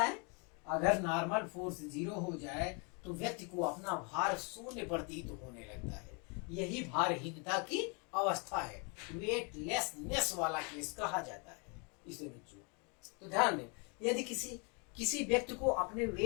है, अगर नॉर्मल फोर्स 0 हो जाए तो व्यक्ति को अपना भार शून्य प्रतीत होने लगता है। यही भारहीनता की अवस्था है, वेटलेसनेस वाला केस कहा जाता है इसे बच्चों। तो ध्यान दें, यदि किसी व्यक्ति को अपने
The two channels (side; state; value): right; quieter; 34.1 dB